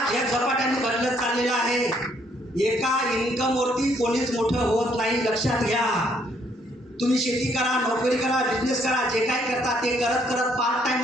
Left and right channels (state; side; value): normal; both; correlation 0.68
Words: या झपाट्याने बदलत चाललेलं आहे. एका इन्कमवरती कोणीच मोठं होत नाही, लक्षात घ्या. तुम्ही शेती करा, नोकरी करा, बिझनेस करा, जे काय करता ते करत करत पार्ट टाइम